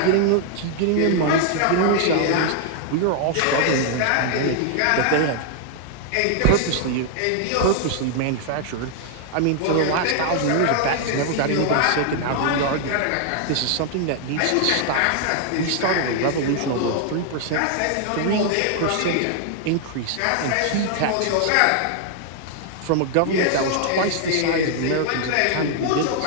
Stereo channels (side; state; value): both; different; correlation 0.00